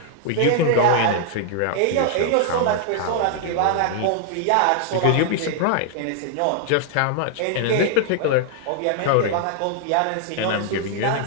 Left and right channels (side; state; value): both; different; correlation -0.01